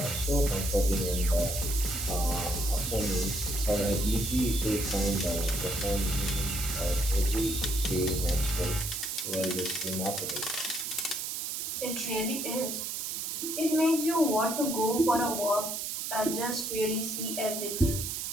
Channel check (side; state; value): right; noise; hiss, 3 dB below the sound